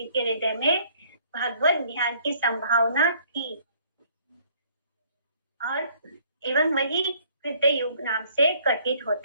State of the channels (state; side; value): inverted; both; correlation -0.61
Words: के हृदय में भगवत ध्यान की संभावना थी और एवं वही कृत्य युग नाम से कथित